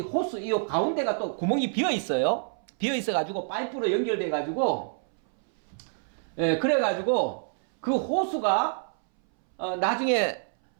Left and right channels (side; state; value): left; silent; 60 dB below the other